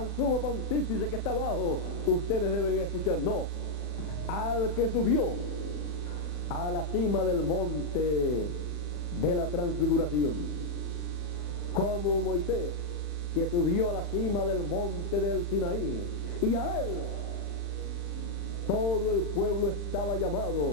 sumo pontífice que está abajo, ustedes deben escuchar. No, al que subió a la cima del monte de la transfiguración, como Moisés, que subió a la cima del monte del Sinaí, y a él todo el pueblo estaba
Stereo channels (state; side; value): late; right; 40 ms